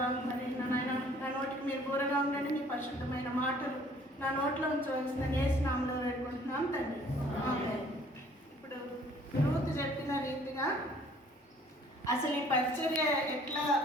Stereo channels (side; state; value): both; normal; correlation 0.56